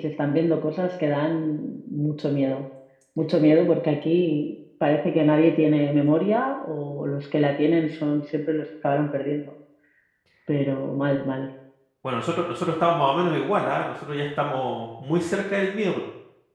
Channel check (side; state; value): both; identical; correlation 1.00